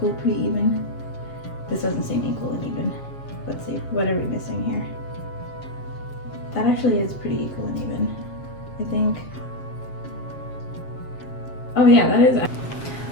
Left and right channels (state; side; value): late; right; 7.4 ms